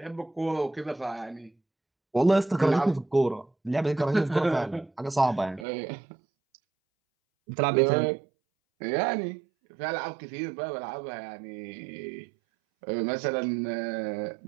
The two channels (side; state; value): left; drops out; at 5.7 s